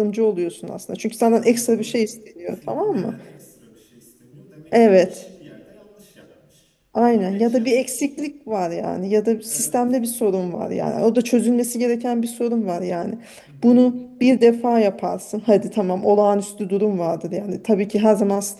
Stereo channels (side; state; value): both; identical; correlation 1.00